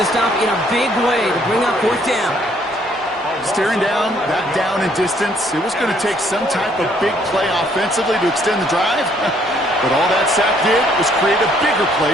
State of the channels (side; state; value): both; normal; correlation 0.65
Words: stop in a big way to bring up 4th down. Staring down, that down in distance, it was going to take some type of big play offensively to extend the drive. But all that sack did was create a bigger